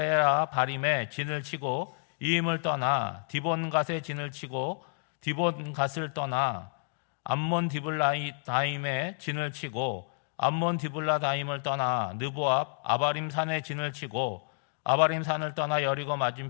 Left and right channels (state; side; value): silent; right; digital silence